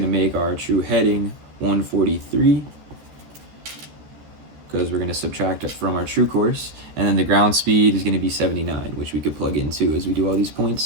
to make our true heading 143. because we're going to subtract it from our true course. And then the ground speed is going to be 79, which we could plug in too as we do all these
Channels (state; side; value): late; left; 13 ms